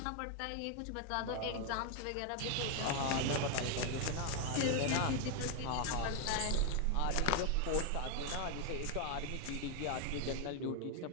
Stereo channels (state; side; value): different; both; correlation 0.00